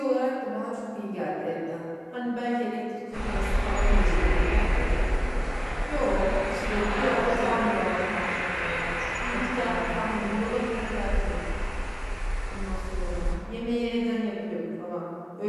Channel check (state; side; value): identical; both; correlation 1.00